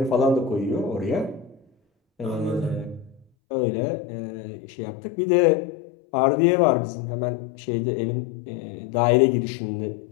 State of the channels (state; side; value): drops out; right; at 3.2 s